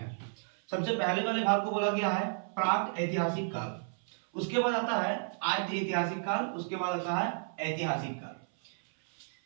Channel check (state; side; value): silent; left; 56 dB below the other